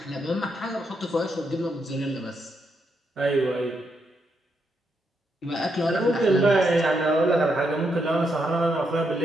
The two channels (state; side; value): normal; both; correlation 0.80